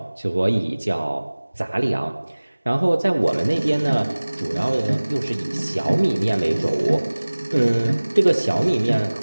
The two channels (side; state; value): both; inverted; correlation -1.00